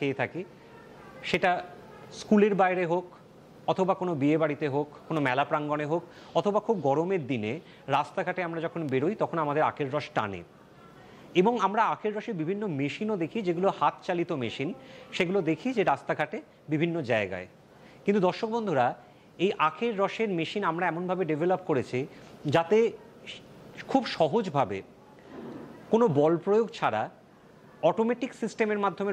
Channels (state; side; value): identical; both; correlation 1.00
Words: থাকি, সেটা স্কুলের বাইরে হোক, অথবা কোনো বিয়ে বাড়িতে হোক, কোনো মেলা প্রাঙ্গণে হোক, অথবা খুব গরমের দিনে রাস্তাঘাটে আমরা যখন বেরোই তখন আমাদের আখের রস টানে। এবং আমরা আখের রসের বিভিন্ন মেশিনও দেখি, যেগুলো হাত চালিত মেশিন, সেগুলো দেখি যে রাস্তাঘাটে বিভিন্ন জায়গায়। কিন্তু দর্শক বন্ধুরা, এই আখের রসের মেশিন আমরা এমনভাবে ডেভেলপ করেছি যাতে খুব সহজভাবে কোনো বল প্রয়োগ ছাড়া অটোমেটিক সিস্টেমের মাধ্যমে